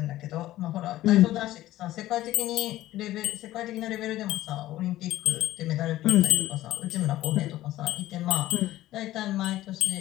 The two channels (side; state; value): right; quieter; 15.1 dB